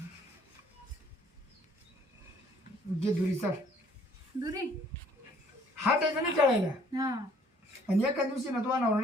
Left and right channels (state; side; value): normal; both; correlation 0.59